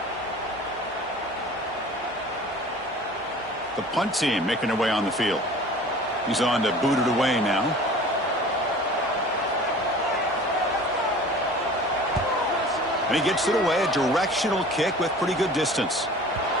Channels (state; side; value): normal; both; correlation 0.43